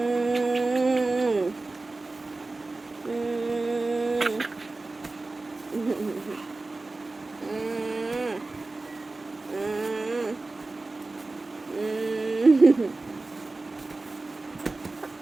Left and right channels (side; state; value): left; quieter; 3.3 dB